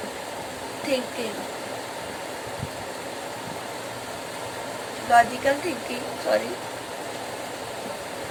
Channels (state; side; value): identical; both; correlation 1.00